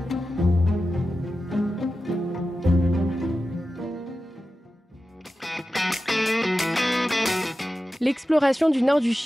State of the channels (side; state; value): both; normal; correlation 0.93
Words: L'exploration du nord du